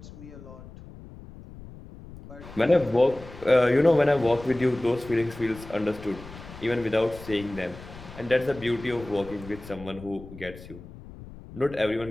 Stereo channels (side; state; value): left; noise; rumble, 16 dB below the sound